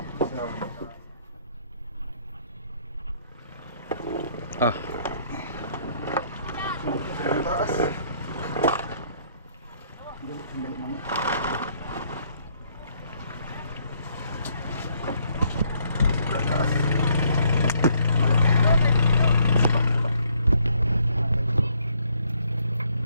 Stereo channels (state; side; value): inverted; both; correlation -0.68